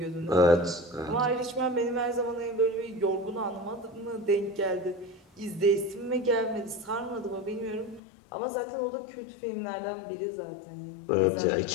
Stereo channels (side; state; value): right; drops out; at 8.0 s